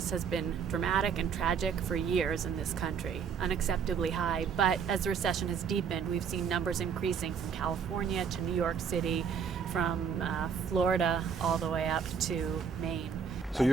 has been dramatic and tragic for years in this country, unacceptably high. But as the recession has deepened, we've seen numbers increasing from California to New York City, from Florida all the way up to Maine. So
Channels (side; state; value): left; quieter; 6.7 dB